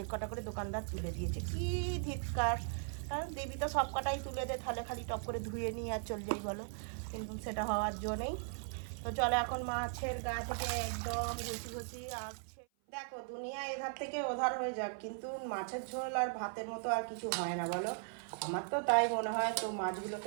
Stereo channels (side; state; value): left; silent; 52 dB below the other